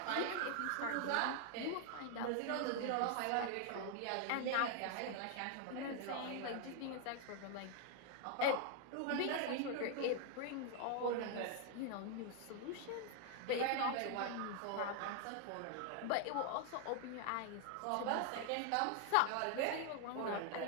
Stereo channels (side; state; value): both; different; correlation 0.00